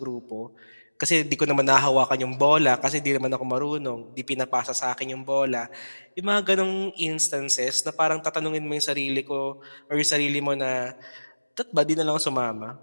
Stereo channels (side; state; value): both; inverted; correlation -1.00